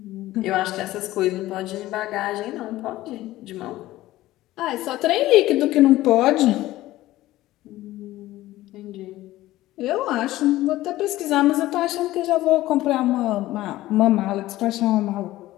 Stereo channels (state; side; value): quieter; right; 16.2 dB